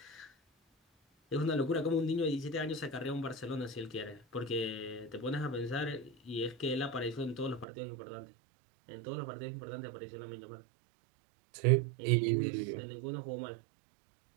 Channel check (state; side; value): drops out; left; at 7.7 s